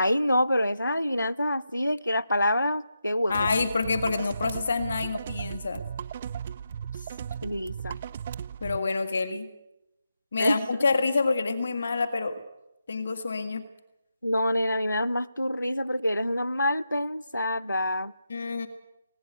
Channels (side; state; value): both; inverted; correlation -0.86